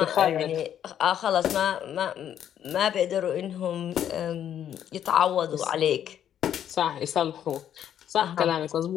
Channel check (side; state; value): right; quieter; 10.0 dB